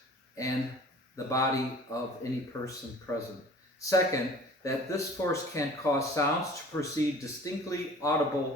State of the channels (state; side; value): normal; both; correlation 0.46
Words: and the body of any person present. Second, that this force can cause sounds to proceed distinctly